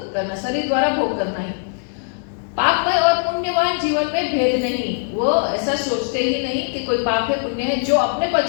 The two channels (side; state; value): right; silent; digital silence